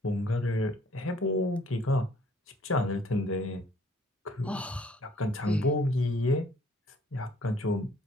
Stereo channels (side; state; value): both; normal; correlation 0.60